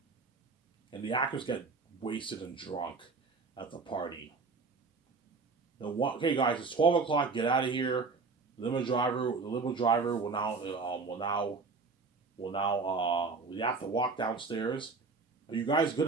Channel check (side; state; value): left; quieter; 4.3 dB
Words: And the actors get wasted and drunk at the party. Okay, guys, it's 12 o'clock. Get out of here. The limo driver we have to walk downstairs. Are you guys good